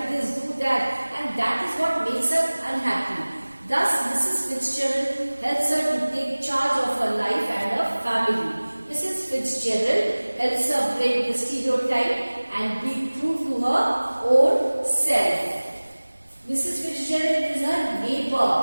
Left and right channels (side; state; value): both; inverted; correlation -1.00